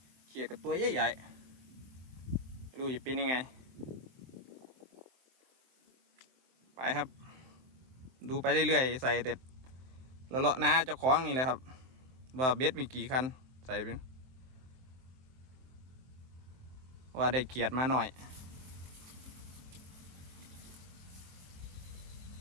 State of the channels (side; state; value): left; late; 23 ms